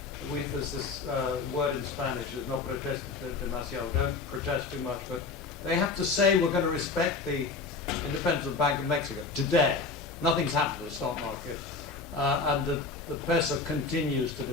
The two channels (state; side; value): quieter; right; 4.1 dB